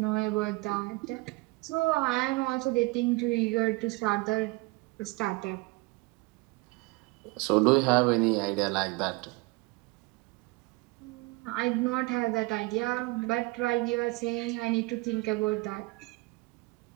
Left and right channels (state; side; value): quieter; left; 23.9 dB